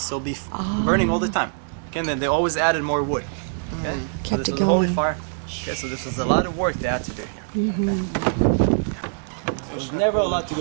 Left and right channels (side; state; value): left; silent; digital silence